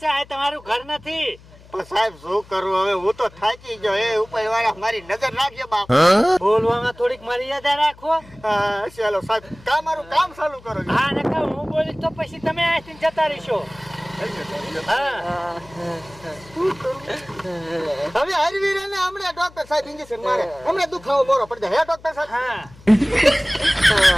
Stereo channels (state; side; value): noise; left; hum, 23 dB below the sound